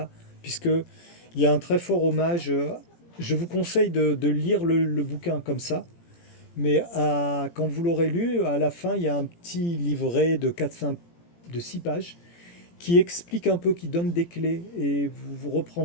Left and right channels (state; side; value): late; right; 17 ms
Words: puisqu'il y a un très fort hommage. Je vous conseille de lire le bouquin comme ça. Mais quand vous l'aurez lu, à la fin, il y a un petit livret de 6 pages qui explique un peu, qui donne des clés, et vous